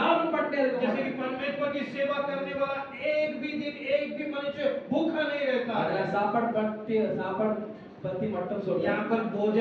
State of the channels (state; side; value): identical; both; correlation 1.00